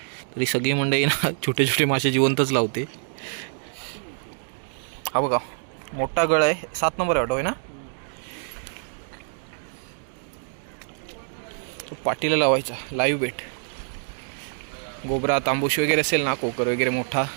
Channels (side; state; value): left; silent; digital silence